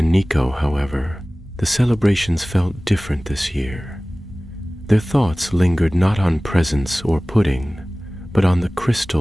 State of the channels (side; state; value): both; normal; correlation 0.98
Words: Nico, however, the celebrations felt different this year. Their thoughts lingered not on presents or pudding, but on the